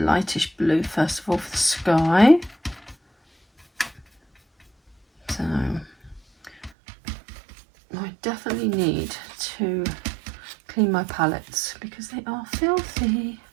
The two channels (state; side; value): drops out; left; at 6.7 s